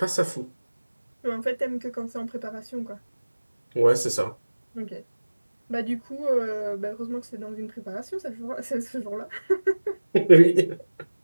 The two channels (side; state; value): both; inverted; correlation -1.00